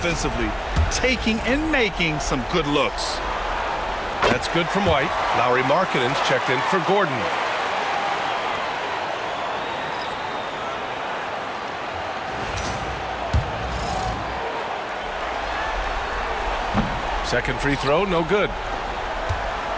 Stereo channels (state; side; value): identical; both; correlation 1.00